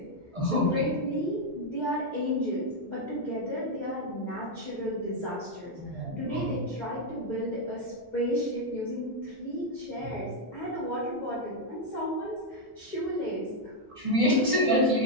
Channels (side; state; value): both; normal; correlation 0.01